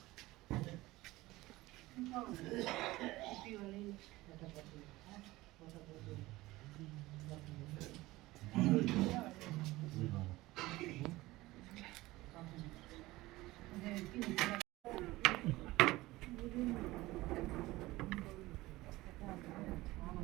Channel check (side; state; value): left; quieter; 18.9 dB